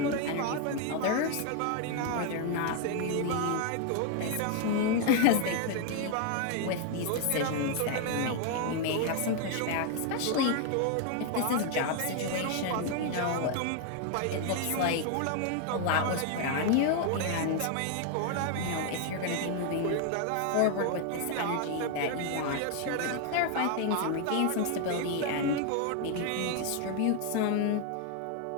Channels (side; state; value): both; different; correlation 0.00